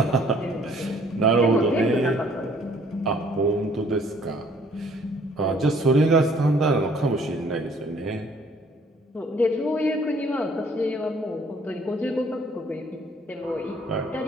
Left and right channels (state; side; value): normal; both; correlation 0.60